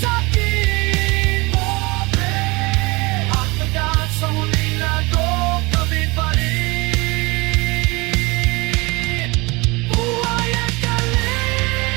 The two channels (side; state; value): left; quieter; 25.1 dB